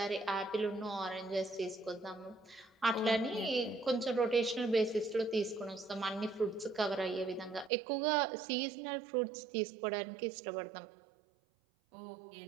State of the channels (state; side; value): drops out; left; at 7.7 s